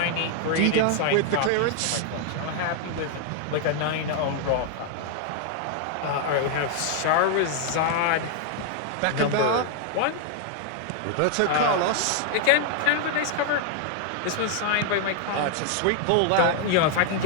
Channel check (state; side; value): different; both; correlation 0.00